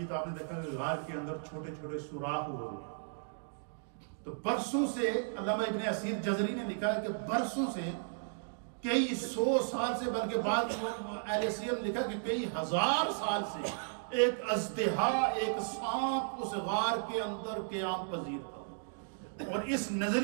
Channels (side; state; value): left; silent; digital silence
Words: تو آپ نے دیکھا کہ غار کے اندر چھوٹے چھوٹے سوراخ ہوئے. تو برسوں سے علامہ ابن اسیر جزری نے لکھا ہے کہ برسوں سے، کئی 100 سال سے، بلکہ بعض اہل سیر نے لکھا کہ کئی ہزار سال سے ایک اژدہا، ایک سانپ اس غار کے اندر قیام پذیر تھا. اور اس